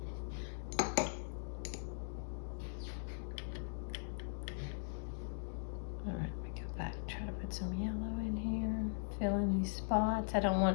All right, let me go back, try to put some yellow in here. Fill in these spots. I don't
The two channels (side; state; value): right; silent; digital silence